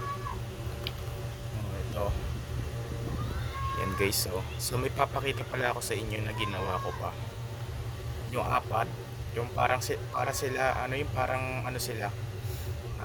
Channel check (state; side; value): identical; both; correlation 1.00